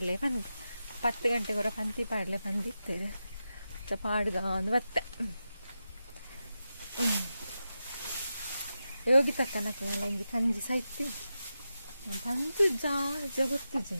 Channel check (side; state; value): both; inverted; correlation -0.90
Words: 10 ಗಂಟೆಗೊರ ಪಂತಿ ಪಾಡ್ಲೆ ಬಂದಿತ್ತೇವೆ ಪಾಡ್ಗ ಒಂದು ಬತ್ತೆ ಯೋಗಿ ತಕ್ಕನಲ್ಲ ಹಿಂಗೆ ಕಂಜಿ ಸಾಯ್ತಿ ಬಂದು ಗೊತ್ತು